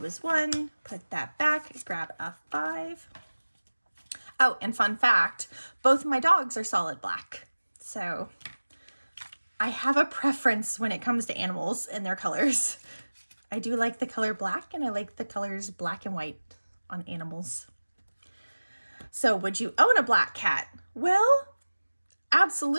1, put that back, grab a 5. Oh, and fun fact, both my dogs are solid black. So I have a preference when it comes to animals and their colors. I do like the color black, and I like the colors black and white on animals. So would you own a black cat? Well,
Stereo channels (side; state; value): both; inverted; correlation -1.00